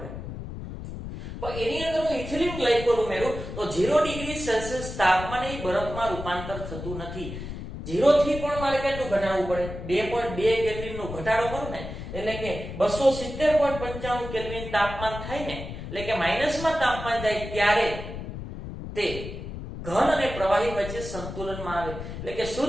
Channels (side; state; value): left; noise; rumble, 9 dB below the sound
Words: પણ એની અંદર હું ઇથિલિન ગ્લાયકોલ ઉમેરું તો 0 ડિગ્રી સેલ્સિયસ તાપમાને એ બરફમાં રૂપાંતર થતું નથી. 0 થી પણ મારે કેટલું ઘટાડવું પડે? 2.2 કેલ્વિન નો ઘટાડો કરું ને એટલે કે 270.95 કેલ્વિન તાપમાન થાય ને એટલે કે માઈનસમાં તાપમાન જાય ત્યારે તે ઘન અને પ્રવાહી વચ્ચે સંતુલનમાં આવે એટલે કે